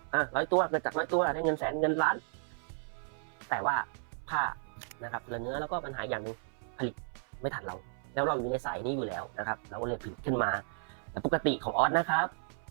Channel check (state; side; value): silent; left; 55 dB below the other